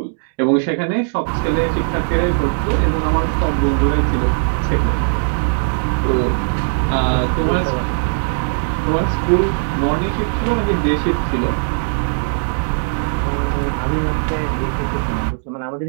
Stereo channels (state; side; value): silent; left; digital silence